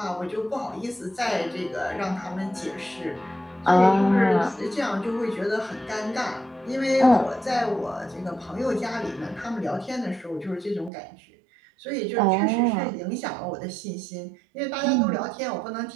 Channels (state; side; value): drops out; left; at 10.9 s